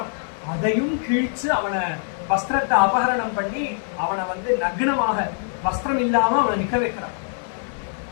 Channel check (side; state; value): right; silent; digital silence